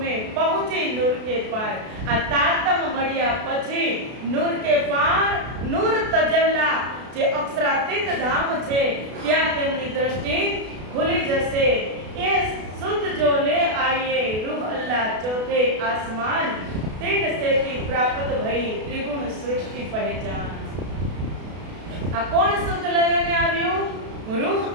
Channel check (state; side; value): late; left; 32 ms